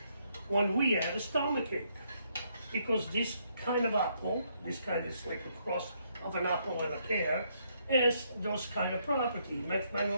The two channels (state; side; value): inverted; both; correlation -0.73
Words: when we had a stomachache, because this kind of apple, this kind is like a cross of an apple and a pear, has those kind of property. They